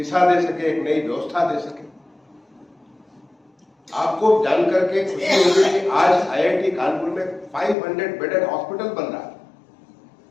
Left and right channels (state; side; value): drops out; right; at 7.8 s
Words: दे सके, एक नई व्यवस्था दे सके। आपको जानकर के खुशी होगी कि आज आईआईटी कानपुर में 500 बेडेड हॉस्पिटल बन रहा है,